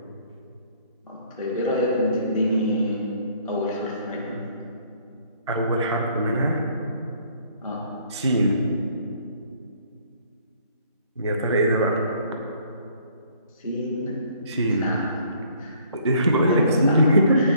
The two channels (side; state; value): both; inverted; correlation -0.61